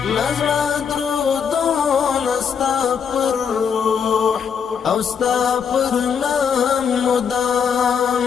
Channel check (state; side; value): quieter; right; 7.0 dB